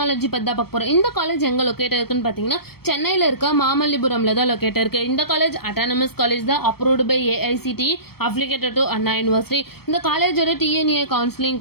பத்தி தான் பார்க்க போறோம். இந்த காலேஜ் எங்க லொகேட் இருக்குன்னு பாத்தீங்கன்னா சென்னையில இருக்க மாமல்லிபுரம்ல தான் லொகேட் இருக்கு. இந்த காலேஜ் அட்டானமஸ் காலேஜ் தான், approved by AICTE, affiliated to Anna University. இந்த காலேஜோட TNA கவுன்சிலிங்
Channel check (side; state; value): right; late; 0.96 ms